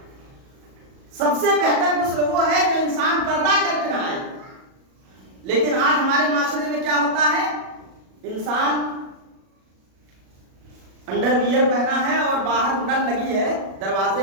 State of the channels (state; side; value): late; left; 37 ms